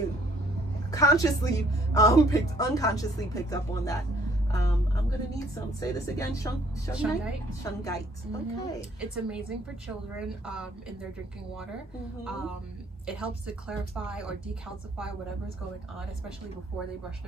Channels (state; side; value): normal; both; correlation 0.62